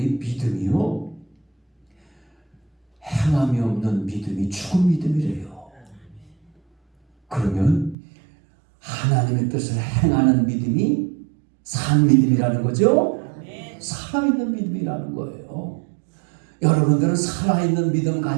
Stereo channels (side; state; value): left; drops out; at 8.0 s